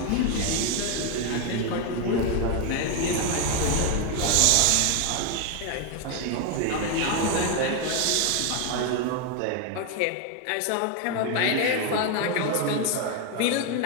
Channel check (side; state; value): both; different; correlation 0.01